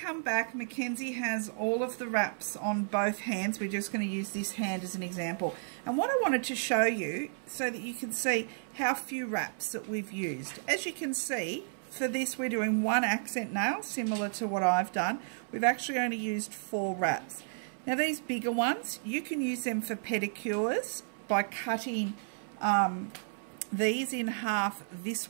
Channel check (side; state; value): left; silent; 56 dB below the other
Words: back. Mackenzie has all of the wraps on both hands. We're just going to use this hand as an example, and what I wanted to show you so that you can see how few wraps that we've used. As you can see, for this we're doing one accent nail similar to what I've done. We've actually only used 4 wraps. Now these bigger ones, you can use them for pedicures by cutting these in half this